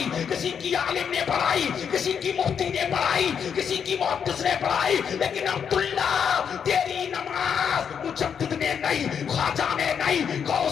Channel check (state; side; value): quieter; right; 7.4 dB